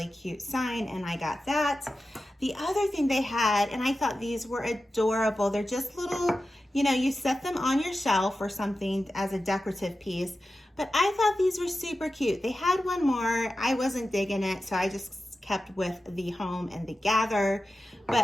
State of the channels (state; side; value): normal; both; correlation 0.93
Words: cute sign, and I got that. The other thing they had, and I thought these were adorable, they're just little, you know, you set them on your shelf or something as a decorative piece, but I thought these were super cute. They had one more, I wasn't digging it, so I just kept with the home and the gather.